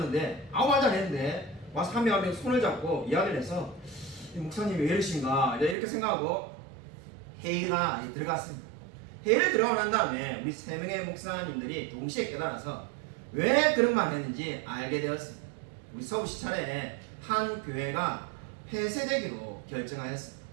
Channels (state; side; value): drops out; left; at 5.8 s